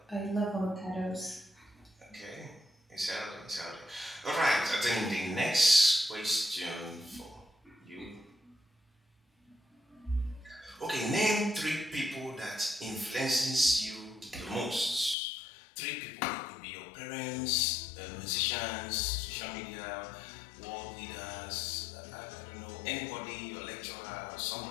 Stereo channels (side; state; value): right; drops out; at 15.2 s